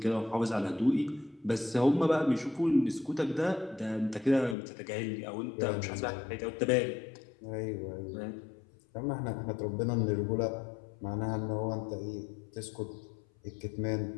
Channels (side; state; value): right; drops out; at 4.5 s